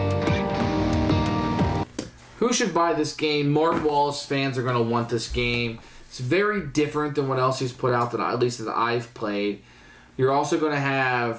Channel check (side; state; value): both; identical; correlation 1.00